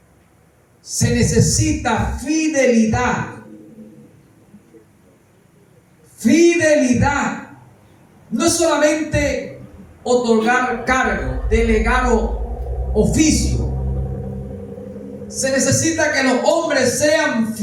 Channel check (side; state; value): both; identical; correlation 1.00